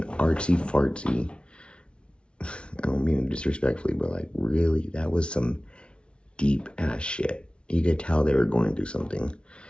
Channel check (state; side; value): late; right; 0.058 ms